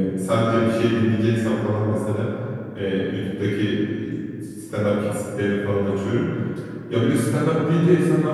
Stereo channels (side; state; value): both; identical; correlation 1.00